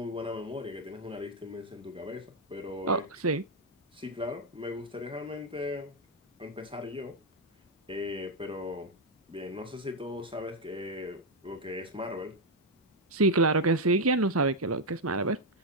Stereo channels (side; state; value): both; normal; correlation 0.02